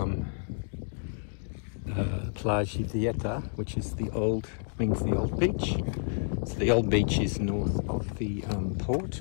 Pt.2, which is the old beach. So the old beach is north of the port,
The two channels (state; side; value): silent; right; digital silence